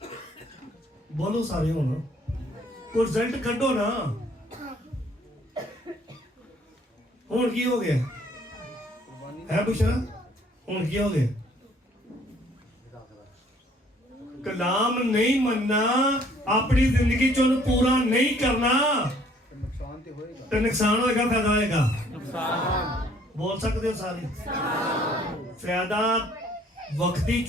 बोलो सारे हो ना, कोई रिजल्ट कड्डो ना। हुण की हो गया है बुशरा? हुण की हो गया? कलाम नहीं मनना, अपनी जिंदगी चो पूरा नहीं करना नुकसान तो होएगा। तो नुकसान होएगा फायदा होएगा? नुकसान। बोल सकते हो सारे? फायदा वक्ती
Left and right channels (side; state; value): both; normal; correlation 0.60